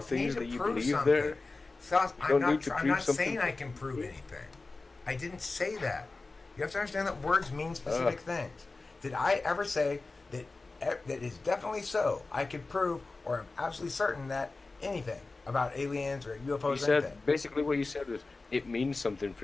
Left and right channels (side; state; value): right; quieter; 3.6 dB